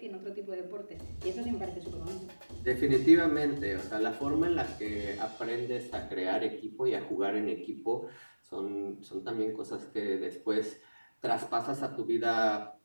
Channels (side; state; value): both; inverted; correlation -1.00